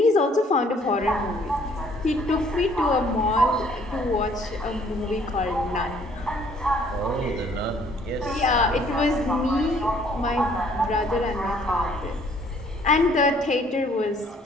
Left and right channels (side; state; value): both; normal; correlation 0.60